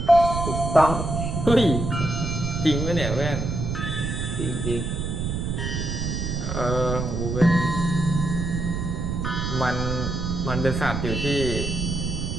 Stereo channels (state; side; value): noise; right; rumble, 2 dB below the sound